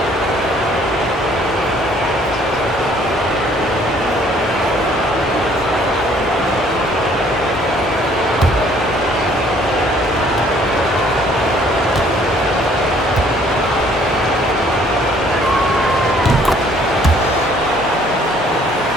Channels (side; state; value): both; normal; correlation 0.60